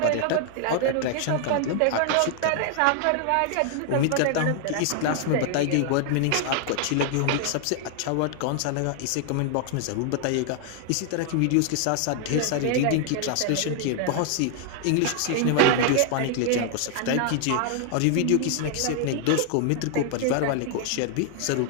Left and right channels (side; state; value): both; different; correlation 0.00